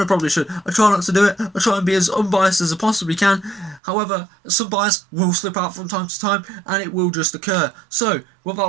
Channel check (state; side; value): drops out; left; at 3.8 s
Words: I probably should. I try not to do it. I try and be as unbiased as I possibly can. However, some bias will slip out from time to time, and it will just occur. So,